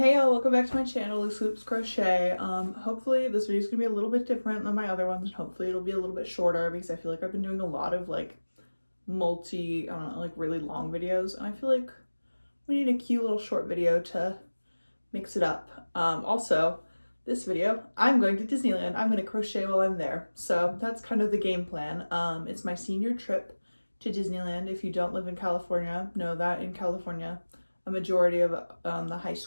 welcome back to my channel, lucy.loops.crochet. Hopefully this video is gonna be a little bit different than my other ones, and hopefully it'll be a little bit shorter because I feel like I've been doing a lot of like really long videos, and I feel like we need a cute little short video to mix it up. Also, this video, I'm going to Disneyland. I'm gonna crochet while I'm there. So that's kind of the game plan. It's my senior trip to Disneyland. If you don't live in California, know that in California, a majority of the high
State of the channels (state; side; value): inverted; both; correlation -1.00